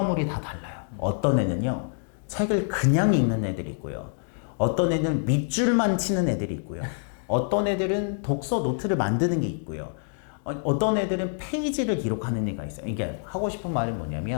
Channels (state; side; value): silent; right; digital silence